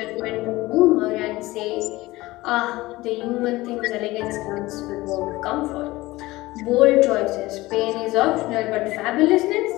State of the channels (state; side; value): quieter; right; 19.2 dB